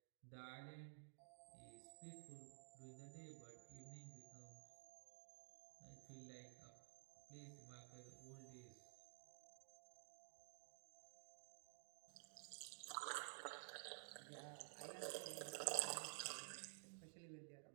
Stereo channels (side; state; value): left; silent; digital silence